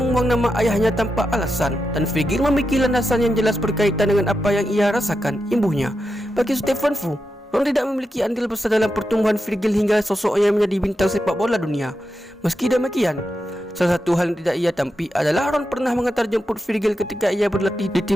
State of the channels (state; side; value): normal; both; correlation 0.88